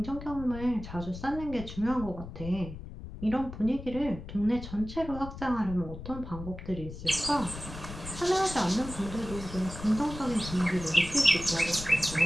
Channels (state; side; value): noise; left; rumble, 11 dB below the sound